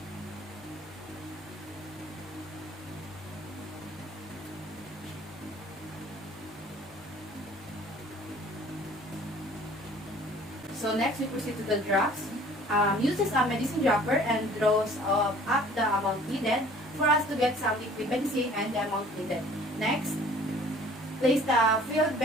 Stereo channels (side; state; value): both; normal; correlation 0.52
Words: So next, we proceed to the drops. Uses a medicine dropper and draws up the amount needed for us to get some liquid medicine and the amount needed. Next, place the filled